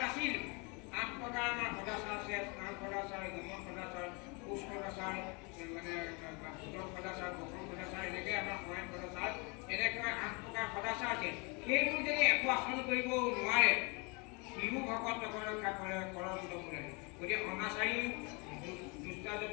নাছিল। 8 প্ৰকাৰ আমাৰ সদাচাৰ আছে, স্নান সদাচাৰ, গমন সদাচাৰ, কোচ সদাচাৰ, মানে ভোজন সদাচাৰ, বসন সদাচাৰ, এনেকৈ আমাৰ শয়ন সদাচাৰ, এনেকৈ 8 প্ৰকাৰ সদাচাৰ আছে। সেইবোৰ যদি একো আচৰণ কৰিব নোৱাৰে সিও ভকত ৰক্ষা কৰে কৰন্ত মুৰাৰী। গতিকে অনাচাৰী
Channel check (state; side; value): quieter; right; 30.5 dB